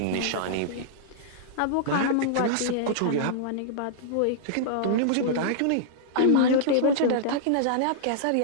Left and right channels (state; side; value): different; both; correlation -0.02